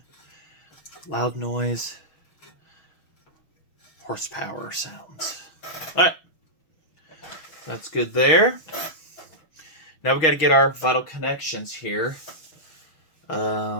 loud noise, horsepower sounds. All right, that's good there. Now we got to get our vital connections here.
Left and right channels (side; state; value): right; late; 6.3 ms